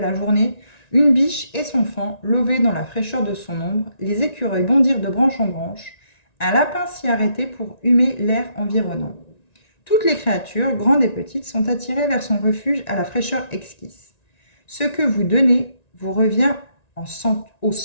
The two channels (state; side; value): late; right; 1.9 ms